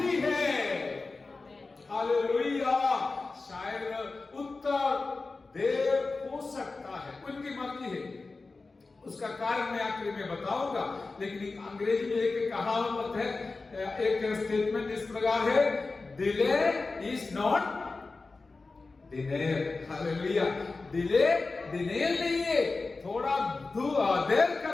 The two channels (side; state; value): right; quieter; 3.8 dB